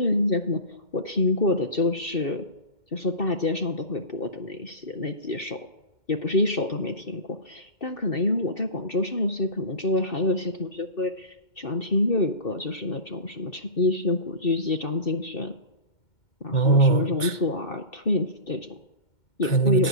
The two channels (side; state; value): right; late; 2.2 ms